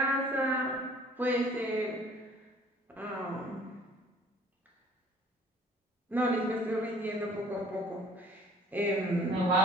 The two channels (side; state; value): both; normal; correlation 0.53